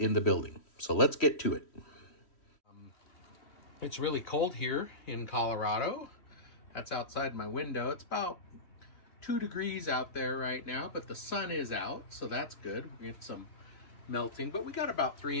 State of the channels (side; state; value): right; late; 3.1 ms